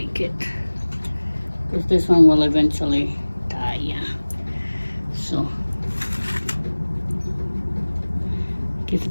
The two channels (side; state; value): both; inverted; correlation -1.00